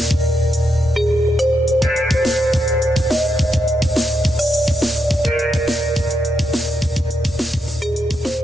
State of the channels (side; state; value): both; normal; correlation 0.82